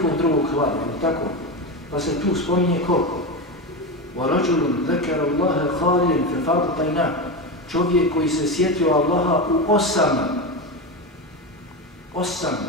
drugog hlada, ali tako. Pa se tu spominje ko? وَرَجُلٌ ذَكَرَ اللَّهَ خَالِيًا فَفَاضَتْ عَيْنَاهُ. Čovjek koji se sjetio Allaha u 8.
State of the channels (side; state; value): both; normal; correlation 0.18